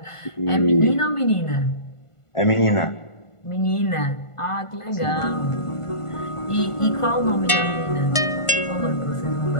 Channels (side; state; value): right; late; 1.5 ms